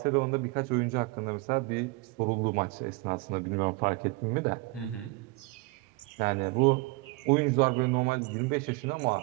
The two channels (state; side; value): quieter; left; 24.3 dB